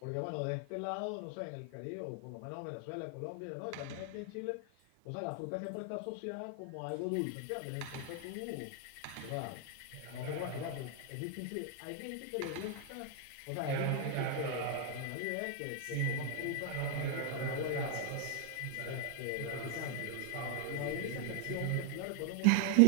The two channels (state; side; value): different; both; correlation 0.00